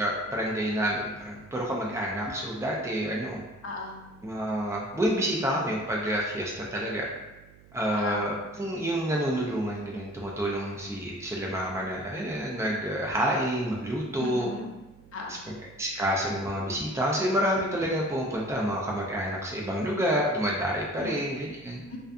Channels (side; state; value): right; noise; hum, 24 dB below the sound